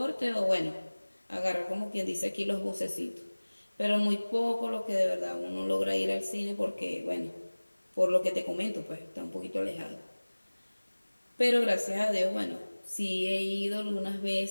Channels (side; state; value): both; inverted; correlation -1.00